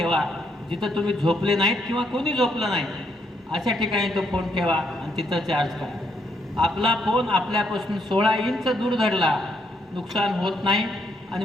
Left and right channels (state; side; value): normal; both; correlation 0.74